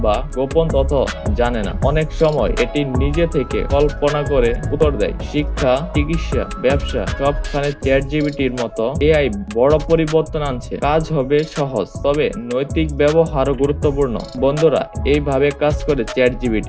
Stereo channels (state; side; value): identical; both; correlation 1.00